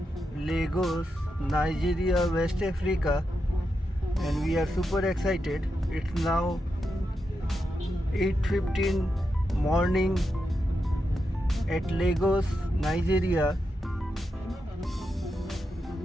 Lagos, Nigeria, West Africa, and we are super excited. It's now 8:15 morning at Lagos, Nigeria.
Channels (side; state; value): both; normal; correlation 0.86